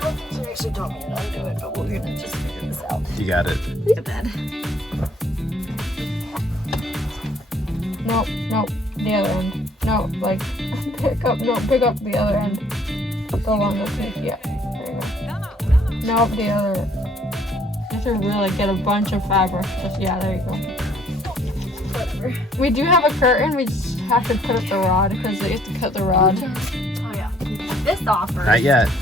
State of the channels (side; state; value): both; normal; correlation 0.62